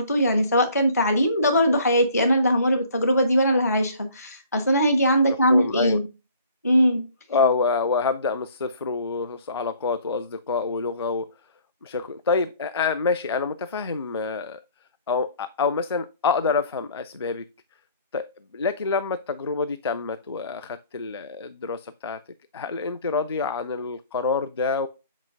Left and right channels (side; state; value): both; inverted; correlation -0.55